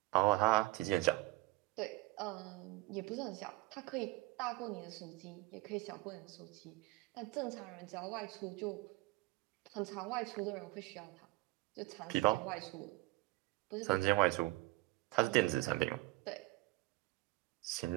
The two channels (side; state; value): left; quieter; 20.9 dB